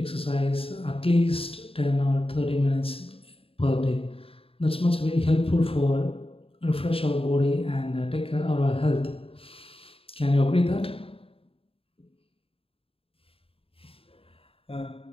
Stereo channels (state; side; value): late; right; 0.27 ms